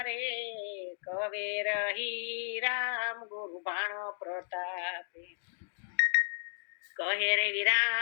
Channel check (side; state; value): right; silent; digital silence